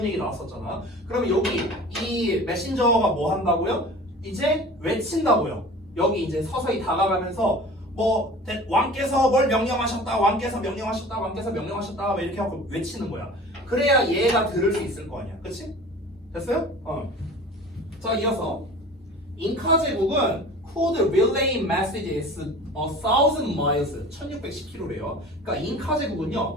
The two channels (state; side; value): normal; both; correlation 0.41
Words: 얘기 나왔었잖아. 그러면 여기 이 메신저가 뭐 한다고요? 이제 외친다고요. 여기 이제 서서히 다가가면서 뭐 왕께서 뭘 명령하셨다. 왕께서 명령하셨다. 왕께서 명령하셨다. 뭐 이렇게 하고 외치는 거야. 그래야 얘가 들을 수 있을 거 아니야. 그치? 됐어요? 자, 이어서 잉카 제국은 could relay messages 1,000 miles 1610km래요. 그러니까 잉카